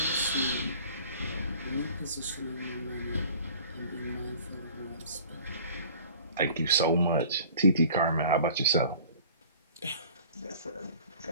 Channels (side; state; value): both; inverted; correlation -0.47